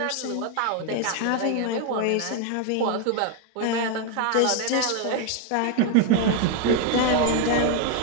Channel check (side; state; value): both; different; correlation 0.01